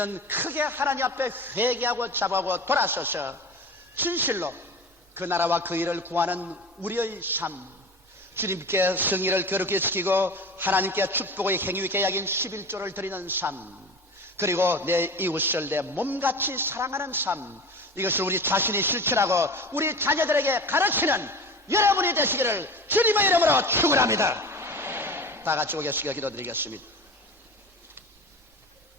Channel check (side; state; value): both; normal; correlation 0.34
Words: 크게 하나님 앞에 회개하고 자부하고 돌아서서 진실로 그 나라와 그 일을 구하는 우리의 삶, 주님께 성의를 거룩히 지키고 하나님께 축복의 행위 계약인 11조를 드리는 삶, 그리고 내 이웃을 내 몸같이 사랑하는 삶, 이것을 우리 자신이 실천하고 우리 자녀들에게 가르치는 여러분이 되시기를 주님의 이름으로 축원합니다. 다 같이 오겠습니다. 기도드리겠습니다.